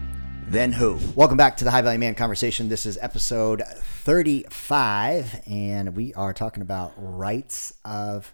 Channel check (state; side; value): inverted; both; correlation -1.00